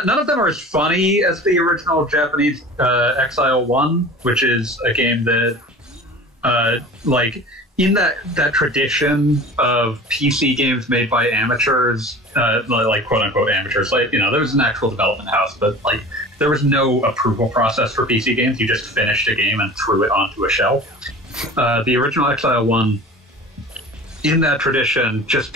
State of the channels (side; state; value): both; normal; correlation 0.39